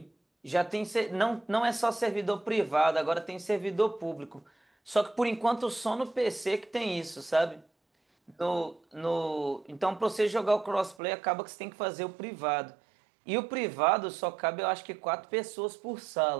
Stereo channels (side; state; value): left; drops out; at 11.0 s